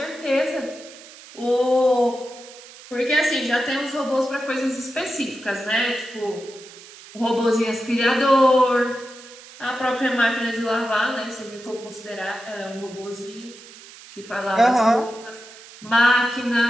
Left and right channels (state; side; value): noise; right; hiss, 19 dB below the sound